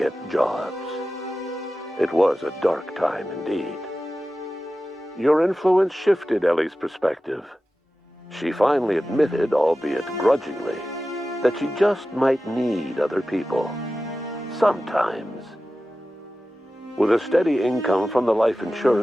jobs. It was a dark time indeed. Your influence shifted Ellie's perspective. She finally admitted, albeit grudgingly, that she just might need other people. Sometimes. With a steady income from the life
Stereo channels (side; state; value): both; normal; correlation 0.94